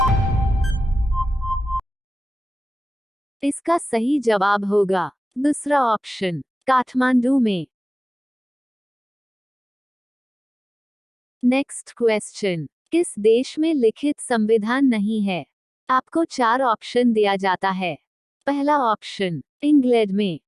इसका सही जवाब होगा दूसरा ऑप्शन काठमांडू में। नेक्स्ट क्वेश्चन, किस देश में लिखित संविधान नहीं है? आपको 4 ऑप्शन दिया जाता है। पहला ऑप्शन इंग्लैंड में,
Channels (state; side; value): normal; both; correlation 0.97